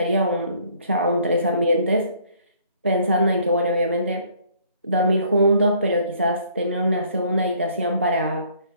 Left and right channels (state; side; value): inverted; both; correlation -0.61